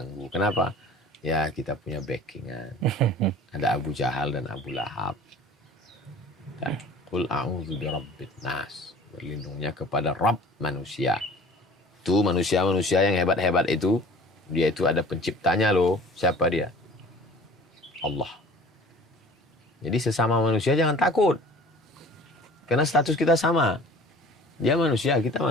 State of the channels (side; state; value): both; normal; correlation 0.46